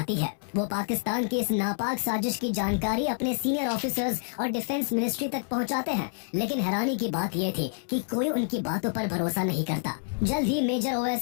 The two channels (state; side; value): silent; right; 59 dB below the other